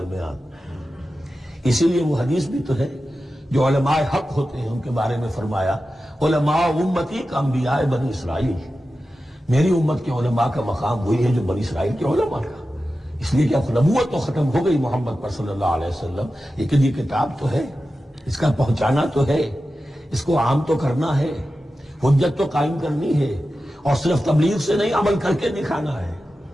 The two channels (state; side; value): normal; both; correlation 0.93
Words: درمیان۔ اسی لیے وہ حدیث بھی تو ہے جو علماء حق ہوتے ہیں ان کے بارے میں فرمایا، علماء امتی کا انبیاء بنی اسرائیل، میری امت کے علماء کا مقام وہی ہے جو بنی اسرائیل کے علماء کا۔ اس لیے کہ اب نبوت تو ختم ہو گئی محمد پر صلی اللہ علیہ وسلم، لیکن یہ کتاب تو ہے، اس کا پہنچانا تو ہے، اس کو عام تو کرنا ہے، حجت تو قائم کرنی ہے، اور صرف تبلیغ سے نہیں عمل کر کے دکھانا ہے،